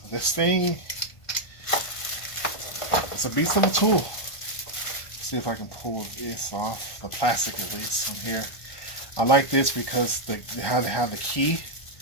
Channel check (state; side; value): late; right; 1.5 ms